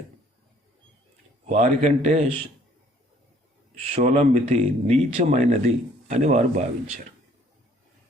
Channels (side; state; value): both; normal; correlation 0.59